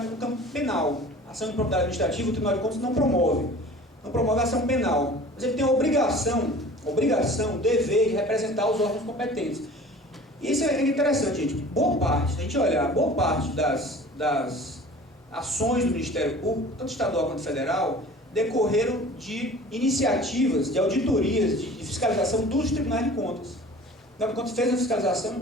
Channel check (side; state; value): both; normal; correlation 0.44